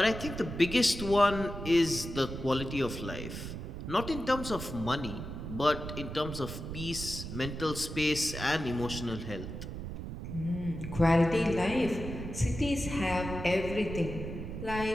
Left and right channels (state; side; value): noise; right; rumble, 8 dB below the sound